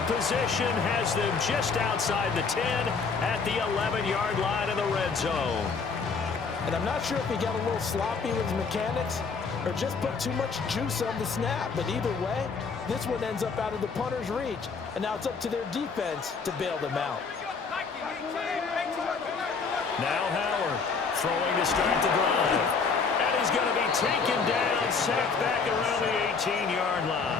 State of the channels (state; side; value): quieter; right; 5.1 dB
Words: position has them just outside the 10 at the 11-yard line in the red zone. And I'm not sure if he got a little sloppy with his mechanics or just put too much juice on the snap. But either way, this one ends up out of the punter's reach. And now it's up to their defense to bail them out. Now Howard throwing to start the drive. And he's going to be taken down sacked back around the 18-yard